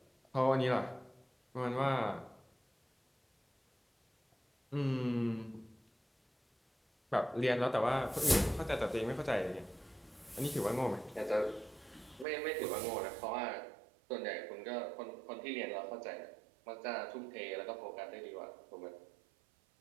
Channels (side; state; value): left; drops out; at 12.2 s